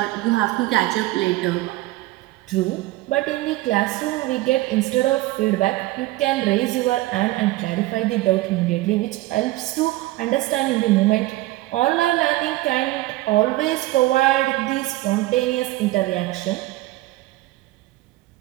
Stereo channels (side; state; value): left; quieter; 18.0 dB